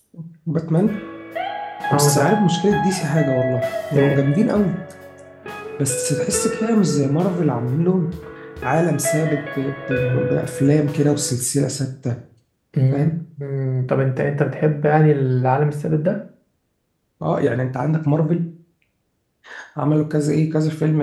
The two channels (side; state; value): both; identical; correlation 1.00